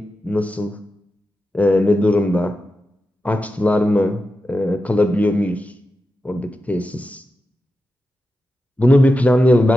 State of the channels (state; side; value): normal; both; correlation 0.90